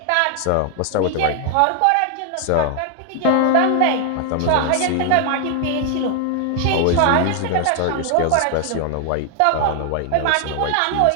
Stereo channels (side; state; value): both; different; correlation 0.00